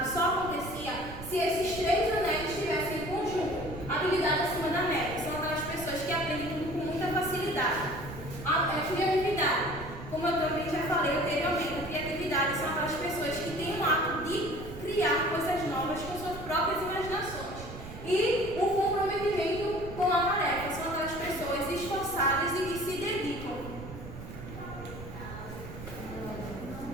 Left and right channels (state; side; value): noise; right; rumble, 11 dB below the sound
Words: só acontecia se esses 3 anéis estivessem em conjunto. Habilidade acima da média são aquelas pessoas que aprendem tudo com muita facilidade. A criatividade, como eu também já falei anteriormente, a criatividade são aquelas pessoas que têm o ato de criar coisas novas com suas próprias imaginações. E o comprometimento com a tarefa são aquelas pessoas esforçadas e que se dedicam.